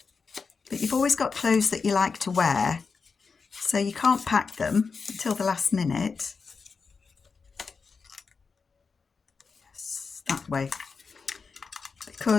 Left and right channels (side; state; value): right; quieter; 5.0 dB